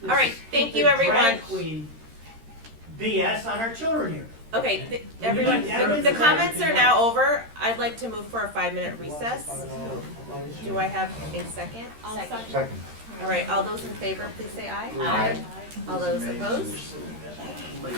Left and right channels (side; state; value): left; late; 13 ms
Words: All right, thank you, stupid everyone. drag queen BS on our children here. Okay, everyone, the comments are now over. I'd like to move for a 5-minute recess. Do I have a second? Second. All right, all those in favor, please say aye. Aye. All those opposed? All